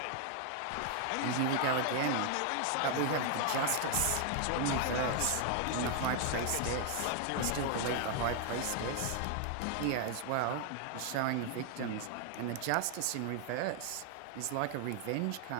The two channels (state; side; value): different; both; correlation 0.00